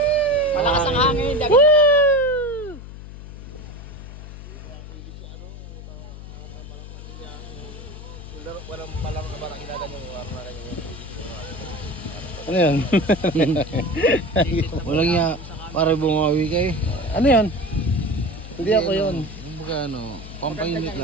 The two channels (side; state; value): left; noise; hum, 13 dB below the sound